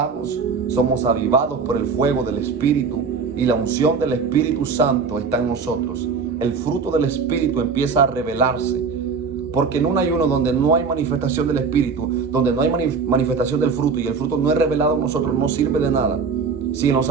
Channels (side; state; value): left; quieter; 5.2 dB